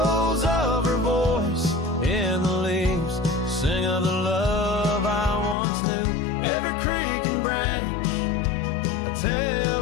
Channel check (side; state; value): right; drops out; at 5.6 s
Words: of her voice in the leaves sing of the love I once knew. Every creek and branch a